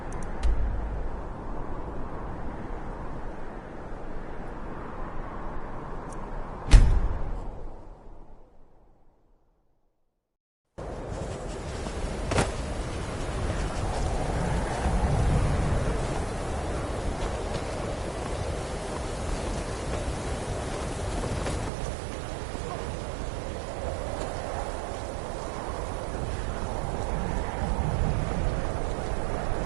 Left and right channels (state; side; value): drops out; left; at 21.7 s